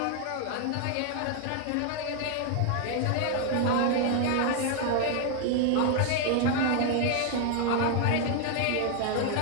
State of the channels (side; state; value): both; different; correlation 0.00